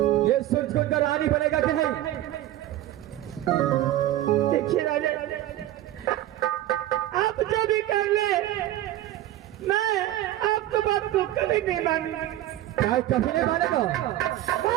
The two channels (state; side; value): quieter; left; 14.0 dB